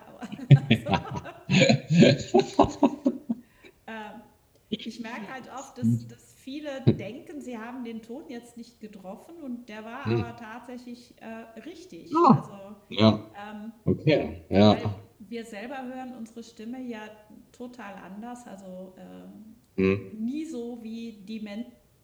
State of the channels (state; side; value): identical; both; correlation 1.00